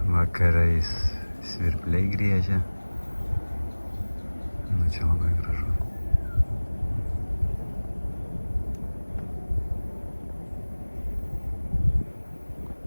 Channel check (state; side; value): inverted; both; correlation -1.00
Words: Vakarais svirpliai griežia.